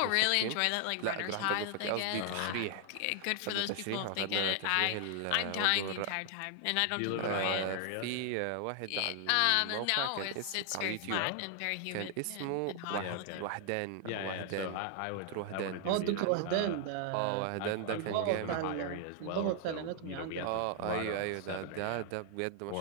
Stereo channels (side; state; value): both; different; correlation 0.00